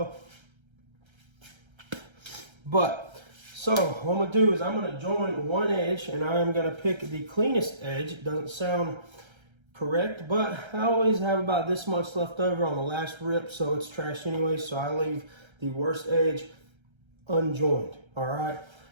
But, so what I'm gonna do is I'm gonna join one edge, and I am gonna pick the cleanest edge. It doesn't sound correct, but I always have about this much left over on the last rip, so it's trash anyway, so I leave the worst edge unjoined. All right,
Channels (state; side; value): late; left; 1.3 ms